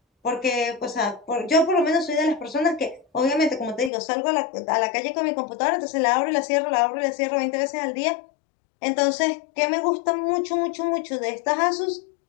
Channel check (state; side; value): drops out; right; at 3.9 s